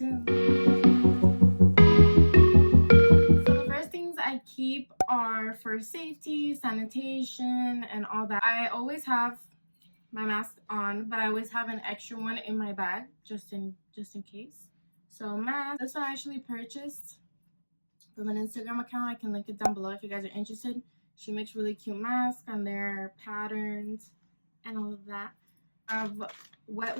So the first things I keep are for safety, sanitation, and all that. I always have my mask on, but I always have an extra one in my bag just in case. So mask, this one I actually purchased from an Instagram account. I can link it down below if you guys are interested. She makes really cute masks and their patterns and all of that. I have wet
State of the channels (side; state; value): both; inverted; correlation -1.00